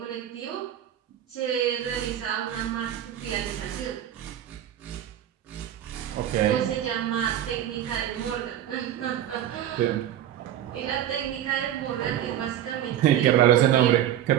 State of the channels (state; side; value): quieter; left; 11.3 dB